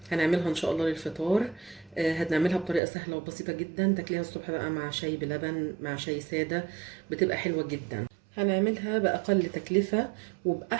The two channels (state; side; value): drops out; left; at 2.8 s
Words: هنعملها ان شاء الله للفطار. هنعملها بطريقة سهلة وبسيطة جدا، تاكليها الصبح بقى مع شاي بلبن، مع شاي سادة، بتبقى حلوة جدا. هنعملها بأقل تكلفة